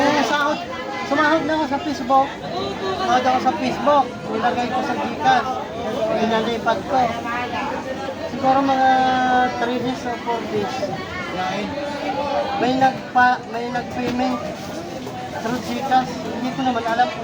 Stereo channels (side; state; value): both; identical; correlation 1.00